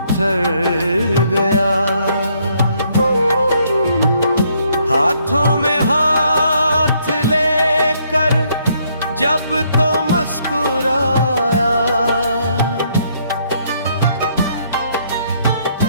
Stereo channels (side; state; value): both; inverted; correlation -0.70